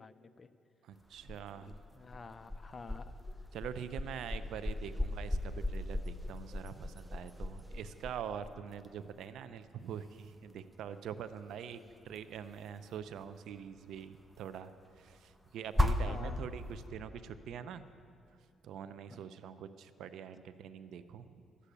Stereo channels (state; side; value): normal; both; correlation 0.79